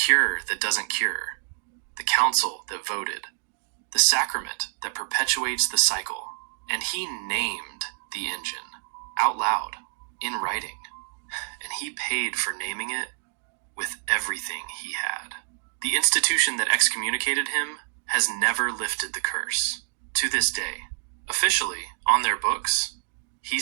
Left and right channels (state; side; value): silent; left; digital silence